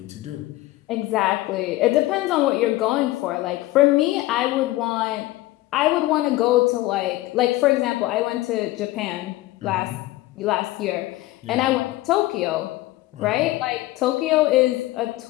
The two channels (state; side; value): quieter; right; 17.6 dB